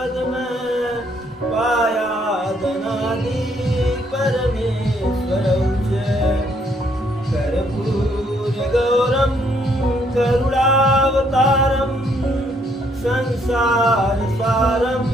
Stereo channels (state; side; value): normal; both; correlation 0.69